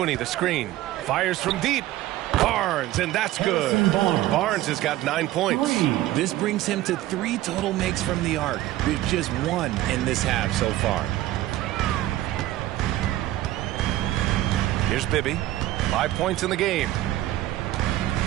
the screen. Fires from deep. Barnes, and that's good. Barnes has got 9 points. This brings him to 3 total makes from the arc, with just 1 in this half so far. Here's Bibby. 5 points in the game.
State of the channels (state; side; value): quieter; left; 15.2 dB